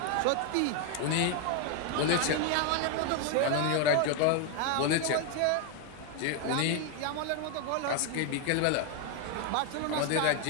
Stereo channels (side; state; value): both; different; correlation 0.01